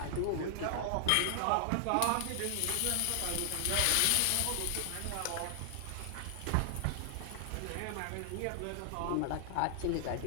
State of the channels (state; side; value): different; both; correlation 0.00